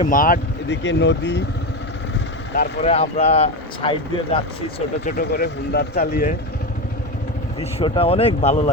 মাঠ, এদিকে নদী, তারপরে আমরা সাইড দিয়ে যাচ্ছি ছোট ছোট করে হুন্ডার চালিয়ে। দৃশ্যটা অনেক ভালো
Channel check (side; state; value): both; normal; correlation 0.17